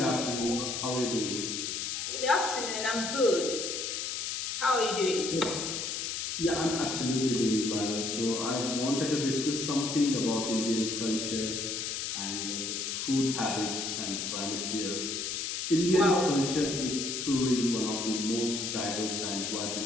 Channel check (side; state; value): left; noise; hiss, 3 dB below the sound